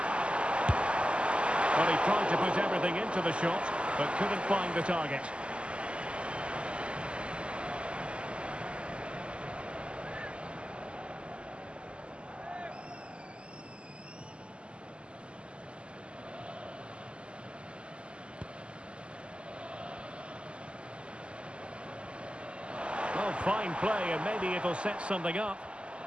Well, he tried to put everything into the shot, but couldn't find the target. Well, fine play, and maybe it'll set something up.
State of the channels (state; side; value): late; left; 0.053 ms